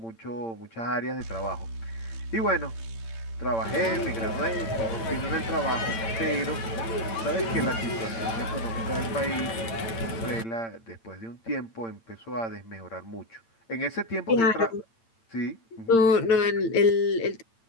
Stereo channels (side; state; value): right; late; 8.8 ms